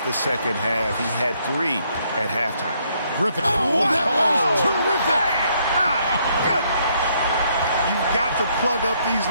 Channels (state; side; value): inverted; both; correlation -0.70